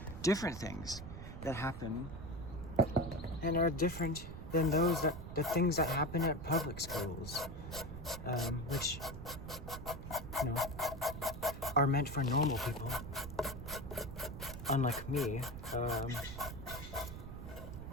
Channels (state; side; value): noise; right; rumble, 10 dB below the sound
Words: different things that happen and are different than the things that happen at public schools, which, are meant for normal people, unlike me,